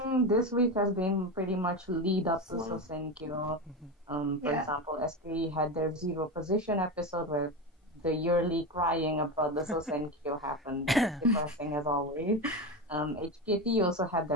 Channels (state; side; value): normal; both; correlation 0.19